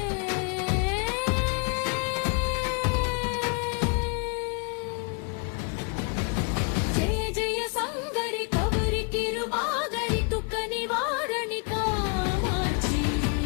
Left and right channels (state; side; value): quieter; right; 35.3 dB